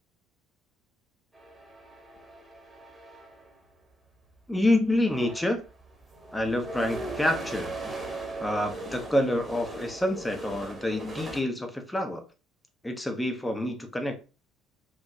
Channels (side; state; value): both; normal; correlation 0.85